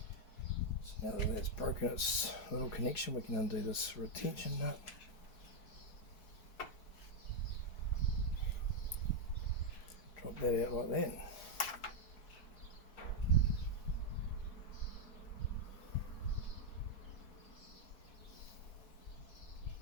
so now that that's broken its little connection, we can undo this retention nut. Drop that out like that.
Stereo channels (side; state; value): right; late; 4.6 ms